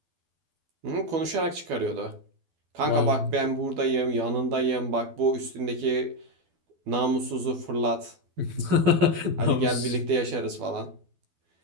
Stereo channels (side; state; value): left; late; 12 ms